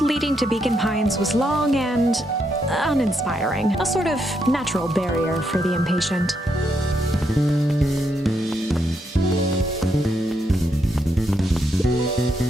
to Beacon Pines was long and uninspiring, a sort of natural barrier for the impatient.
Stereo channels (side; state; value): both; normal; correlation 0.79